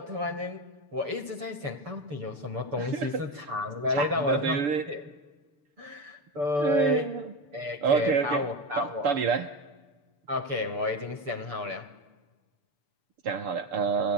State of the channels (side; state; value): left; late; 6.9 ms